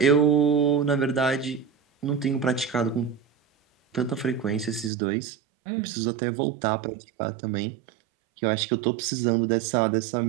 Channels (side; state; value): left; drops out; at 4.9 s